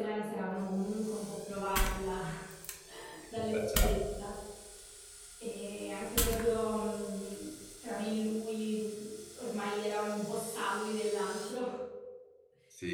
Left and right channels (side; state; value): both; identical; correlation 1.00